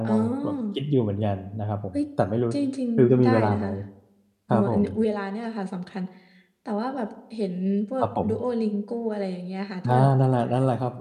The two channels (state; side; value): identical; both; correlation 1.00